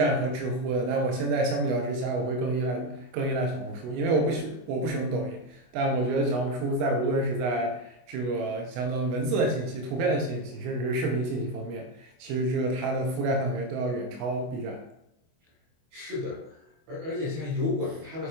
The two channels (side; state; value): left; late; 24 ms